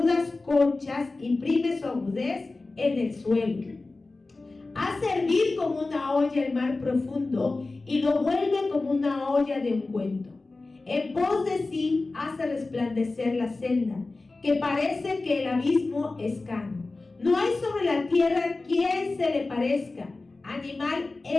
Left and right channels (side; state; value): right; quieter; 3.4 dB